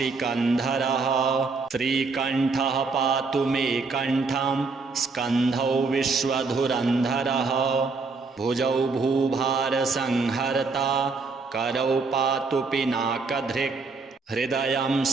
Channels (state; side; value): quieter; left; 4.2 dB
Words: श्रीकण्ठः पातु मे कण्ठं स्कन्धौ विश्वधुरन्धरः भुजौ भूभारसंहर्ता करौ पातु पिनाकधृक् हृदयं